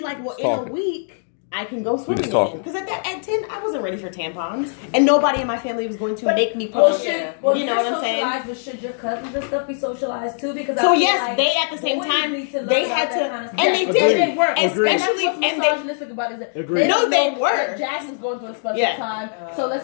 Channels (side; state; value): right; silent; digital silence